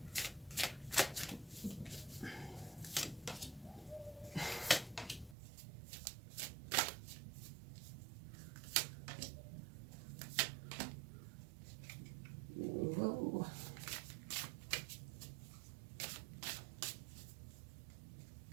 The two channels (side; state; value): left; drops out; at 5.4 s